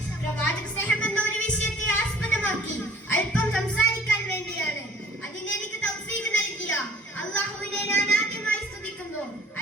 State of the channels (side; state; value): both; normal; correlation 0.52